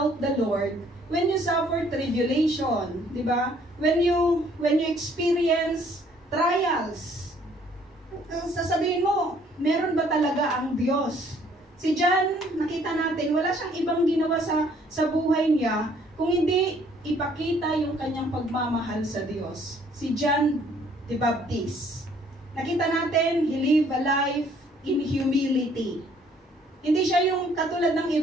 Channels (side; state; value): both; normal; correlation 0.62